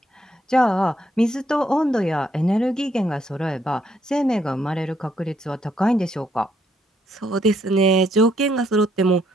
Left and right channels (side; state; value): both; normal; correlation 0.72